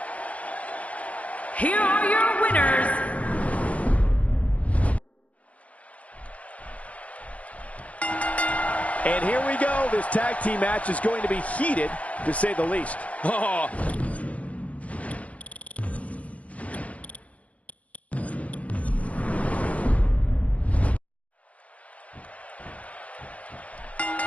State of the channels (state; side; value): late; right; 0.067 ms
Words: Here are your winners, and here we go. This tag team match is going to be heated, to say the least. Oh.